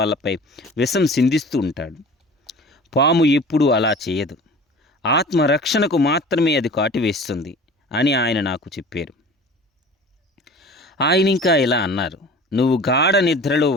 విషం సిందిస్తూ ఉంటాడు. పాము ఎప్పుడూ అలా చేయదు. ఆత్మరక్షణకు మాత్రమే అది కాటివేస్తుంది అని ఆయన నాకు చెప్పారు. ఆయన ఇంకా ఇలా అన్నారు, నువ్వు గాఢ నిద్రలో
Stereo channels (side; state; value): both; normal; correlation 0.41